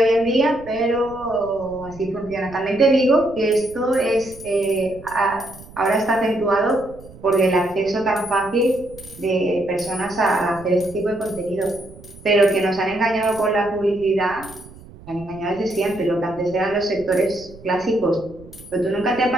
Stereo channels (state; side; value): noise; right; rumble, 19 dB below the sound